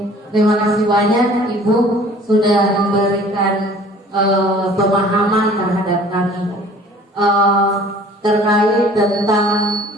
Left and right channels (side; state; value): both; normal; correlation 0.50